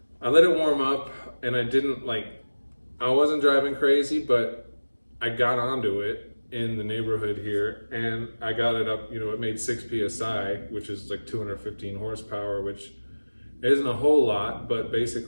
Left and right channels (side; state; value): both; inverted; correlation -1.00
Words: let it warm up and I wasn't driving crazy, but I got onto it in the neighborhood here and I got it up, it made 6 PSI, which is like 215 horsepower, which isn't a whole lot, but